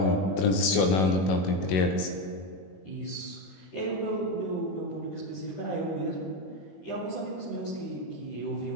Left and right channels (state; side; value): late; right; 21 ms